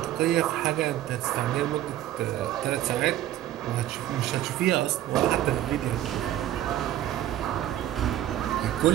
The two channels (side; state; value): left; quieter; 12.9 dB